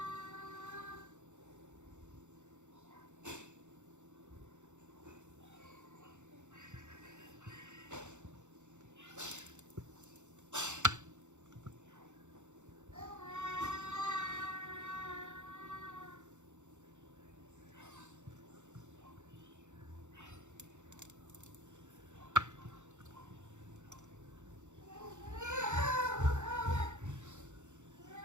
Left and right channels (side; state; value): left; late; 0.84 ms